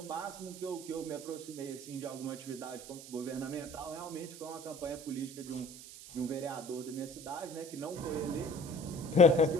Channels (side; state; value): right; noise; hiss, 14 dB below the sound